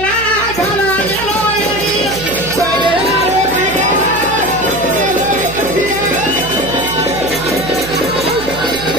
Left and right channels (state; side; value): noise; right; hum, 12 dB below the sound